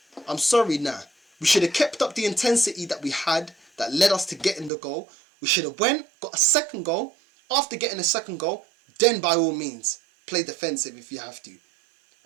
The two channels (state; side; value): drops out; left; at 4.7 s